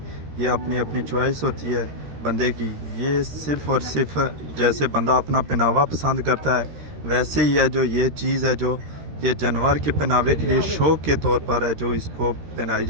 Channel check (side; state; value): left; late; 13 ms